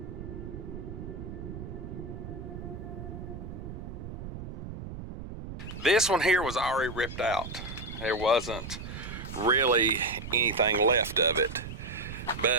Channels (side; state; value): right; noise; rumble, 9 dB below the sound